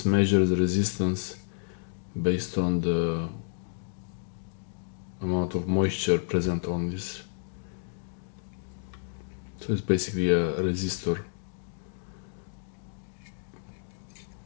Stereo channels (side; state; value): right; silent; digital silence